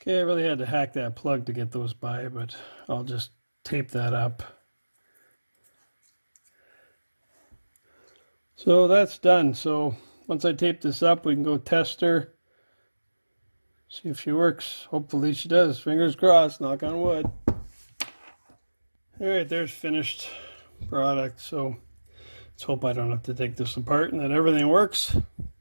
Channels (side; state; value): both; inverted; correlation -1.00